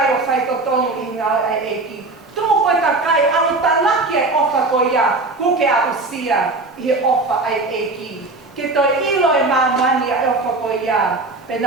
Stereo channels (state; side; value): quieter; left; 3.3 dB